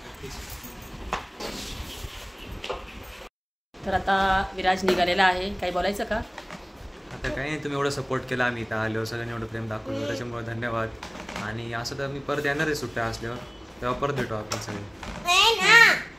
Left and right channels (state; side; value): identical; both; correlation 1.00